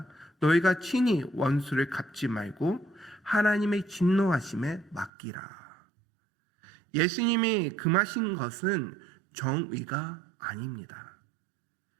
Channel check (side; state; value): left; drops out; at 5.1 s